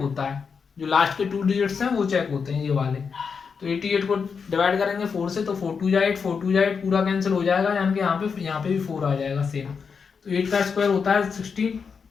है, जो लास्ट के 2 डिजिट्स हैं वो चेक होते हैं ये वाले। तो 88 को डिवाइड करेंगे 4 से, तो 4 2 जा 8, 4 2 जा 8, पूरा कैंसिल हो जाएगा, यानी कि यहाँ पे भी 4 आ जाएगा सेम। तो 8 का स्क्वायर होता है 16,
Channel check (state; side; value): quieter; right; 5.8 dB